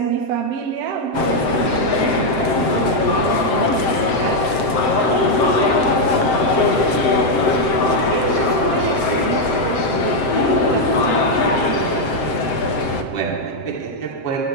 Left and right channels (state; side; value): late; right; 7.7 ms